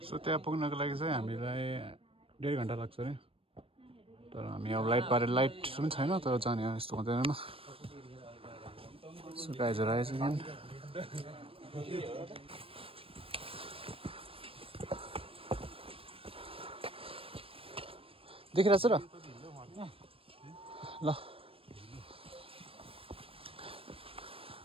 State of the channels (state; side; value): late; left; 0.27 ms